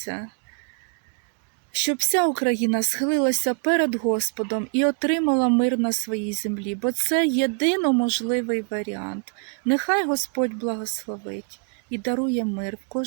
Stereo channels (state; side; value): quieter; left; 38.0 dB